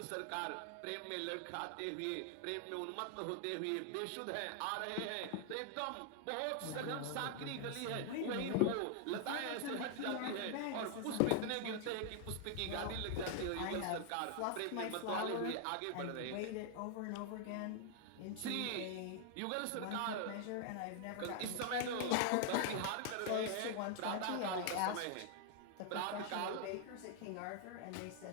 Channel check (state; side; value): different; both; correlation 0.00